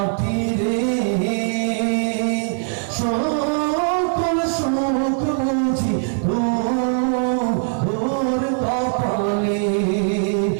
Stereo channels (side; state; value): left; silent; 65 dB below the other